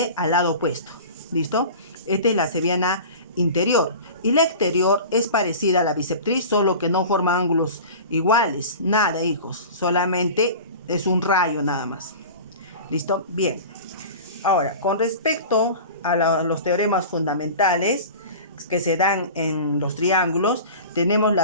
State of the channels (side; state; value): both; inverted; correlation -0.36